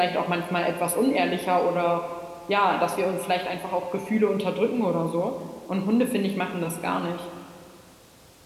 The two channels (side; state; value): both; identical; correlation 1.00